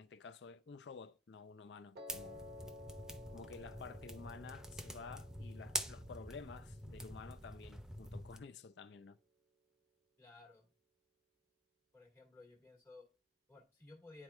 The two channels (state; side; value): normal; both; correlation 0.36